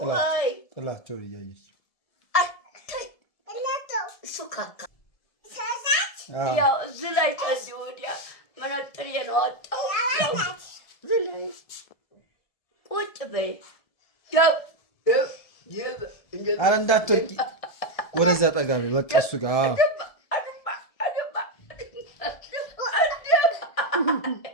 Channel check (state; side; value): late; right; 1.7 ms